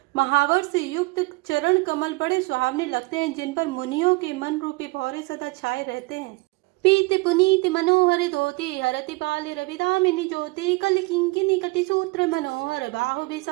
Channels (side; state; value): left; quieter; 24.9 dB